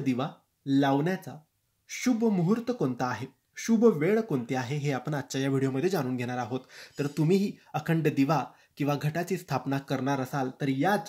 लावण्याचा शुभ मुहूर्त कोणता आहे, शुभ वेळ कोणती आहे, हे आपण आजच्या या व्हिडिओमध्ये जाणून घेणार आहोत. तर तुम्हीही अखंड दिवा किंवा घटाची स्थापना करणार असाल तर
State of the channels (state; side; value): identical; both; correlation 1.00